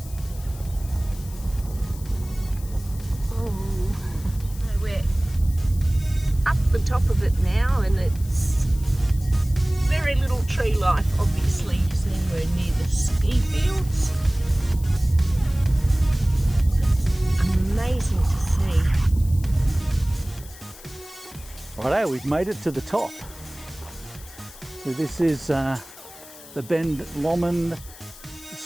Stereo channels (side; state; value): left; noise; hiss, 19 dB below the sound